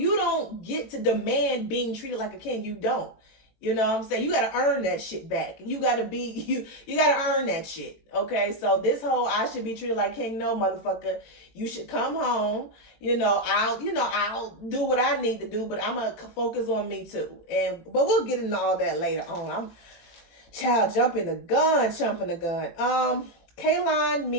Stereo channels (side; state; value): right; late; 19 ms